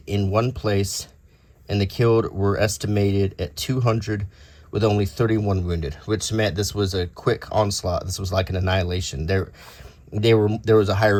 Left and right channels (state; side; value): identical; both; correlation 1.00